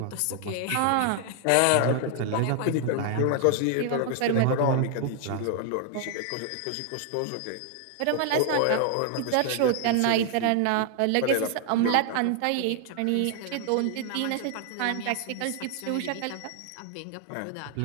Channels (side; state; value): both; different; correlation 0.00